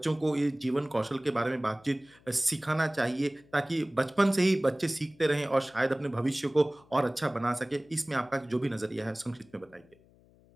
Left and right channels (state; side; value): noise; left; hum, 29 dB below the sound